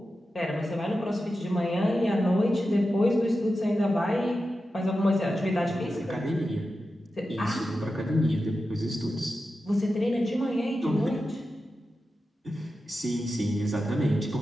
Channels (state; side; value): normal; both; correlation 0.91